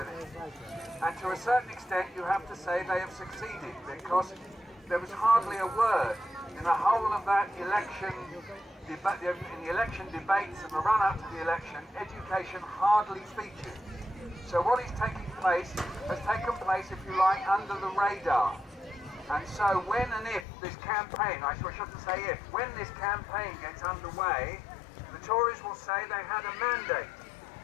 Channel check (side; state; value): right; drops out; at 20.5 s